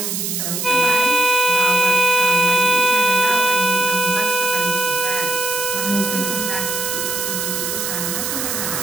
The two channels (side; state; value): right; noise; hiss, 2 dB below the sound